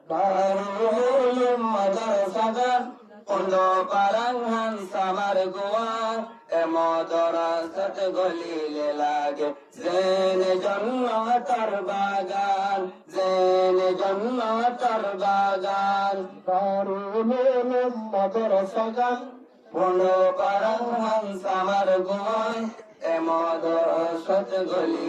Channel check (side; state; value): both; identical; correlation 1.00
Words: দারুল মাদ্রাসাগান পড়লো পারাঙ্গান সামার গোয়ান মাদ্রাসাত গলিলে লাগে জেনে জন্নতর বাগান জেনে জন্নতর বাগান দারুল মাদ্রাসাগান পড়লো পারাঙ্গান সামার গোয়ান মাদ্রাসাত